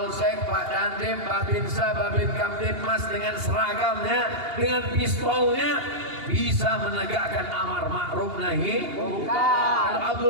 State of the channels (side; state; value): left; late; 2.8 ms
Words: Pak Dandim, Pak Binsa, Babin Kamtibmas dengan seragamnya, dengan pistolnya bisa menegakkan amar ma'ruf nahi munkar.